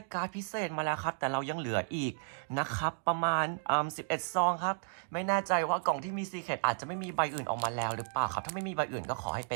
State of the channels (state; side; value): silent; left; digital silence